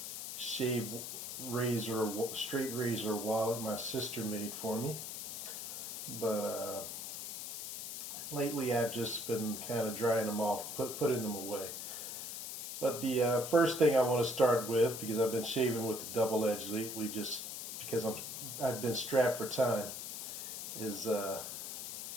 straight razor wallet my sister made for me. But lately I've just been kind of drying them off, putting them away. But the first thing I want to start with, because I've been shaving with the double edge lately, just because I've been strapped for time, is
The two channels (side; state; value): left; noise; hiss, 6 dB below the sound